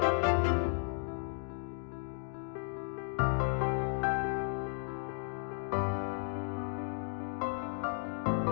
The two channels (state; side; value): silent; right; 55 dB below the other